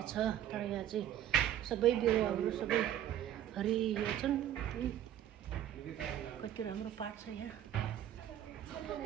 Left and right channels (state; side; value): quieter; left; 11.3 dB